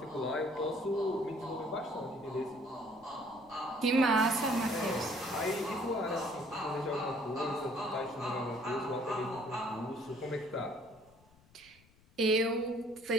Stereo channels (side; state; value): left; noise; rumble, 29 dB below the sound